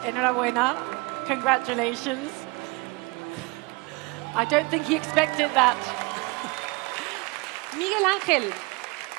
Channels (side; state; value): left; quieter; 26.5 dB